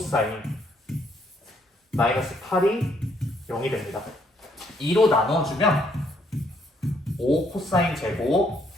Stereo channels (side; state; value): both; normal; correlation 0.70